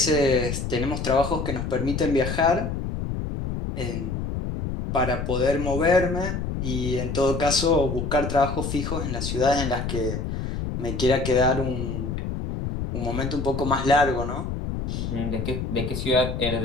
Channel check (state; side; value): noise; left; rumble, 3 dB below the sound